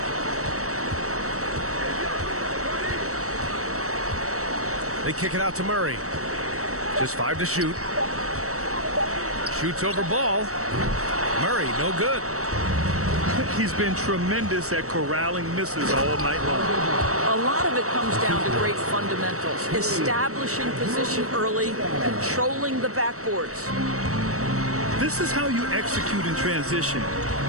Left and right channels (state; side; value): late; left; 0.65 ms